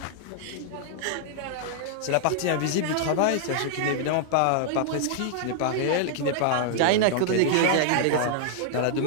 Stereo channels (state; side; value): different; both; correlation -0.01